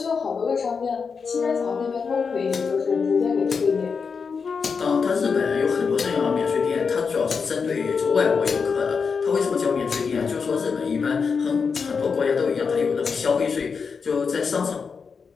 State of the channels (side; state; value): right; quieter; 5.5 dB